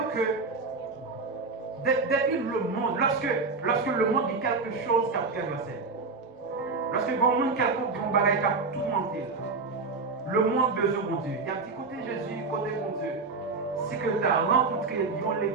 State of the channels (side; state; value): left; quieter; 4.2 dB